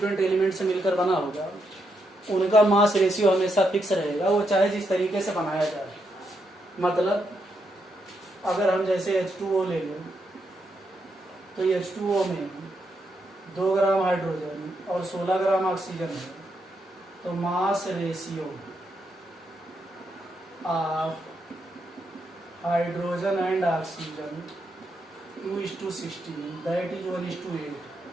एलिमेंट से मिलकर बना होगा उनका मास रेशियो हमेशा फिक्स रहेगा, वो चाहे जिस तरीके से बनाया जाए। मतलब अगर हम जैसे H2O ले लें तो H2O में 2 ग्राम हाइड्रोजन और 16 ग्राम ऑक्सीजन है, तो mass ratio of hydrogen and oxygen 2:16 that is 1:8।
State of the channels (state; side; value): normal; both; correlation 0.80